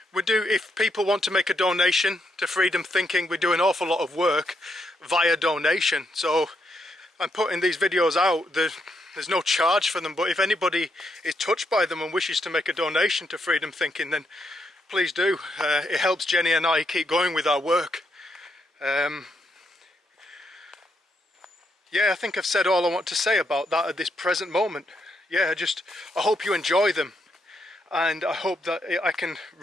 If people want to make a donation to Freedom Thinking, we do an awful lot of work via donation. So I'm putting these videos out. There's no charge for them, but if anybody is touched by them and wishes to make a donation to Freedom Thinking, then please do. It helps Jenny and I keep going with our work. Yeah, I think I've said all I want to say about that at this present moment. Yeah, I hope you enjoy them, and I hope that I can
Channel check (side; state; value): both; normal; correlation 0.79